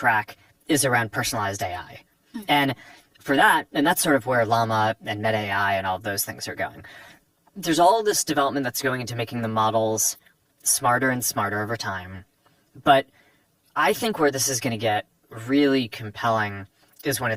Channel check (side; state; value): both; identical; correlation 1.00